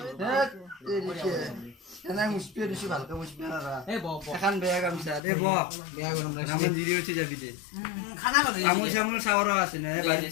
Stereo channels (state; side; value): drops out; right; at 5.2 s